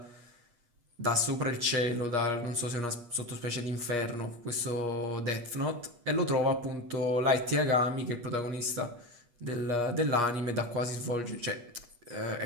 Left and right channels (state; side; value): late; left; 8.4 ms